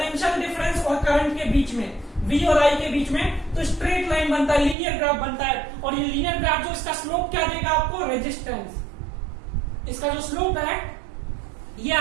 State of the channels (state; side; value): drops out; left; at 4.8 s